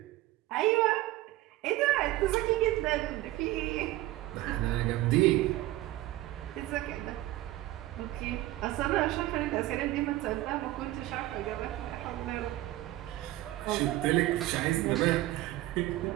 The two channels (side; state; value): left; quieter; 16.8 dB